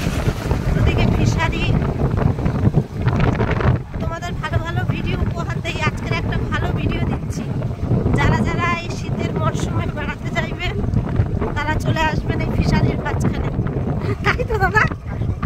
ওদিকে ফিশারি। তোমাদের ভালো ভালো ভিডিও উপহার দেই, আজকের একটা ভালো ভিডিও দিচ্ছি। যারা যারা এই শীতের মরশুমে বেড়াতে যাইবেন তারা চলে আসবেন এই ফিশারির মাঝখানে, তাই তো দাদা?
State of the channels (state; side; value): identical; both; correlation 1.00